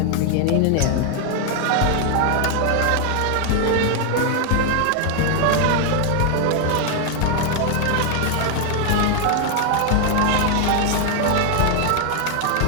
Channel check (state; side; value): different; both; correlation 0.00